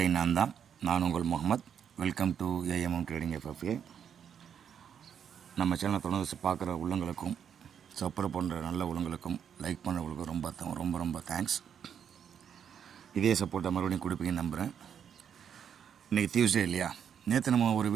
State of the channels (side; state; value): left; quieter; 8.2 dB